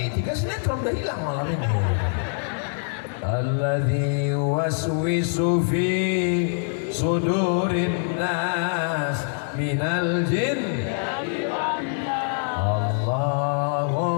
3 sinetron udah hilang malam ini. Alladzi waswisu fi sudurin nas minal jin.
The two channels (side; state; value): right; silent; digital silence